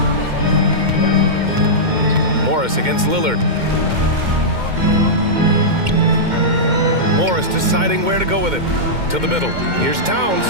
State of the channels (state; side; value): late; left; 2.1 ms